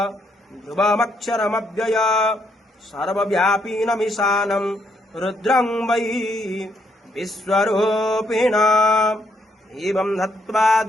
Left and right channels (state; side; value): normal; both; correlation 0.73